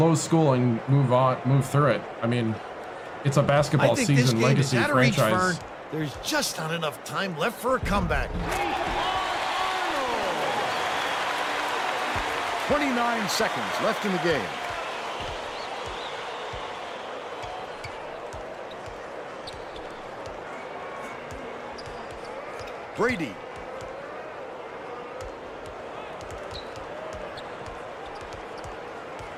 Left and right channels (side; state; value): both; identical; correlation 1.00